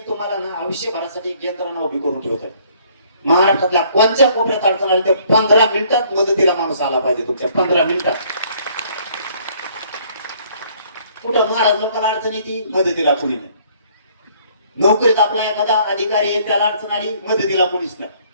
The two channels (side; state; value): both; inverted; correlation -0.61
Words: तुम्हाला ना आयुष्यभरासाठी एक यंत्रणा उभी करून ठेवतात. महाराष्ट्रातल्या कोणत्या कोपऱ्यात अडचण आली तर 15 मिनिटात मदतीला माणूस आला पाहिजे. तुमच्या 15 मिनिटात कुठं महाराज लोकांना अडचण येते मदतीला कुणी नाही. नोकरीत आपला एखादा अधिकारी आहे त्याला अडचण आली मदतीला कुणीच नाही.